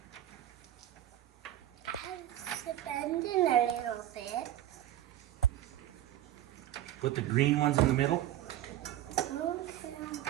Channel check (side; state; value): left; quieter; 13.0 dB